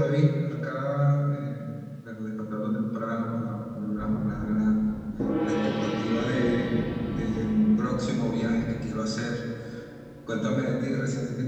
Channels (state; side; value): identical; both; correlation 1.00